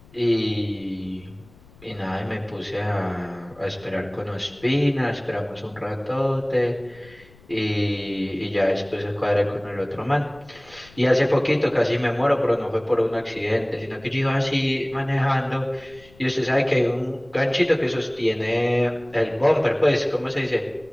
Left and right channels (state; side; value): noise; left; rumble, 25 dB below the sound